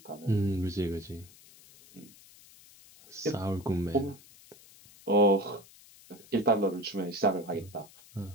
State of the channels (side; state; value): left; noise; hiss, 23 dB below the sound